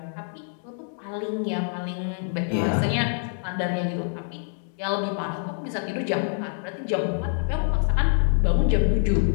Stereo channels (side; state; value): right; silent; 61 dB below the other